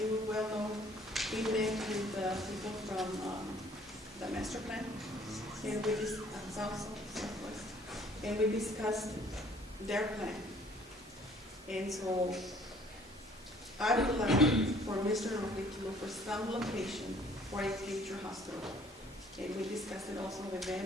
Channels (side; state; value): both; normal; correlation 0.57